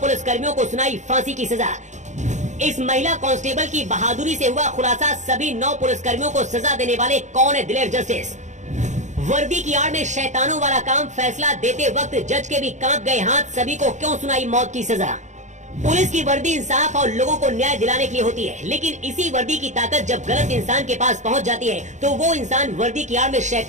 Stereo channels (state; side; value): late; left; 0.35 ms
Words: को सुनाई फांसी की सजा। इस महिला कांस्टेबल की बहादुरी से हुआ खुलासा, सभी 9 पुलिसकर्मियों को सजा देने वाले कौन है दिलेर जस्टिस। वर्दी की आड़ में शैतानों वाला काम, फैसला देते वक्त जज के भी कांप गए हाथ, सभी को क्यों सुनाई मौत की सजा। पुलिस की वर्दी इंसाफ और लोगों को न्याय दिलाने के लिए होती है, लेकिन इसी वर्दी की ताकत जब गलत इंसान के पास पहुंच जाती है तो वो इंसान वर्दी की आड़ में